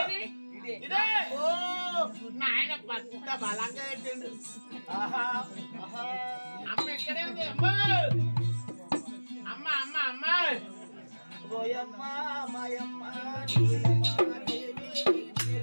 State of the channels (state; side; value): inverted; both; correlation -1.00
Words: ఇదే ఓ నాయన పక్క బలంగా పెట్టిండు. అమ్మ ఎక్కడే ఉంది? అమ్మ అమ్మ అమ్మ ఓయమ్మ మాయమ్మ